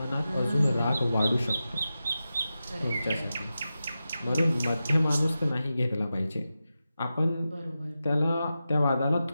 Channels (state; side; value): inverted; both; correlation -0.92